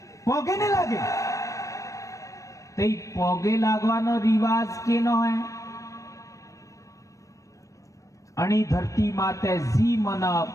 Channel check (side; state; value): right; late; 0.16 ms